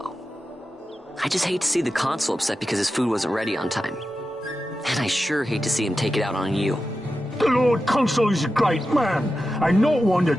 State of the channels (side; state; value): both; normal; correlation 0.91